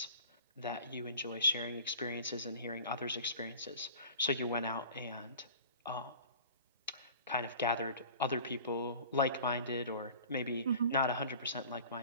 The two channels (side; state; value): both; inverted; correlation -0.43